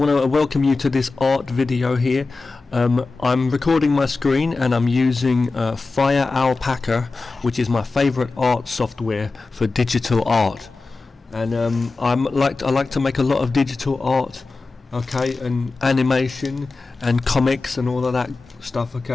to welcome you to this art video here. I'm recording my screen and I'm using Firealpaca, which is my favorite art software for digital art. And I like to make a lot of digital art, okay, and animation and comics and all of that stuff,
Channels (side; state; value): right; quieter; 3.8 dB